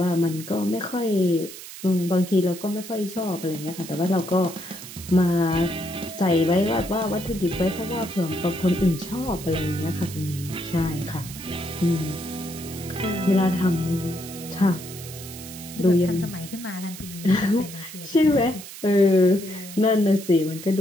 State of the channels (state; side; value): noise; right; hiss, 13 dB below the sound